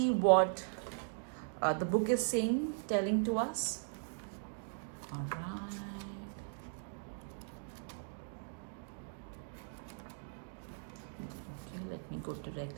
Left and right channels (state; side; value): silent; left; digital silence